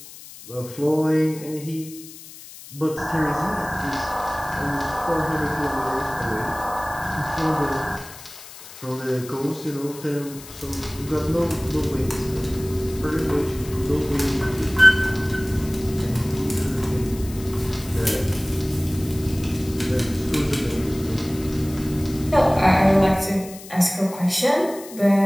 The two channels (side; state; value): left; noise; hiss, 16 dB below the sound